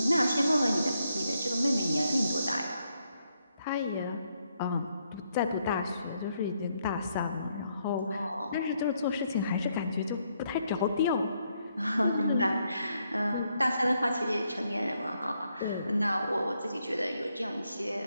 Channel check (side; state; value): both; inverted; correlation -0.77